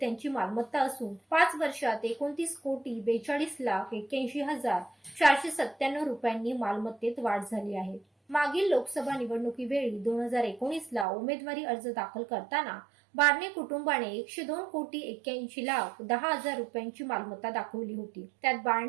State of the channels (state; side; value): drops out; left; at 11.1 s